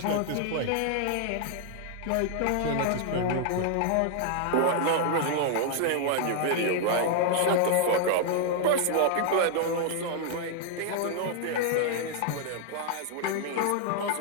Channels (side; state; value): both; different; correlation 0.00